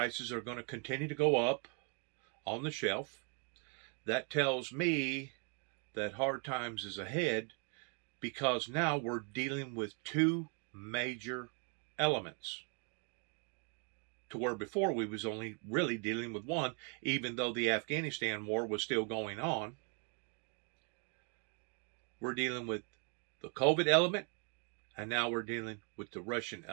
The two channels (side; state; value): left; quieter; 38.0 dB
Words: are going to continue to go up on the shelf. That tells me that hard times is ahead, because now we're dealing with two major elements, to where before we was only really dealing with one, even though the Afghanistan war was still going on. We're dealing with the COVID element, and now we're dealing with the Russian